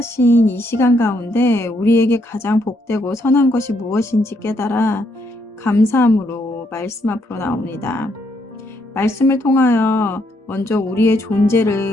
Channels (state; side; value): normal; both; correlation 0.74